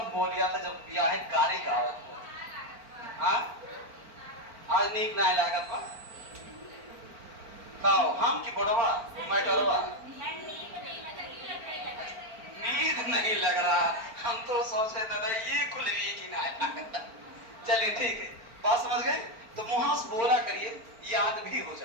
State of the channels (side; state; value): left; late; 4.4 ms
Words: बोल लिया था जब ब्याह गाड़ी गावत हो। हां आज नीक ना लागत बा काओ हम की बड़वा मैटरवा नींद नहीं लग रहा। हम तो सोच रहे दादा ये खुल रही कि ना। चलिए ठीक है, बात समझ गए? तो मुंह से बोला करिए, याद भी हो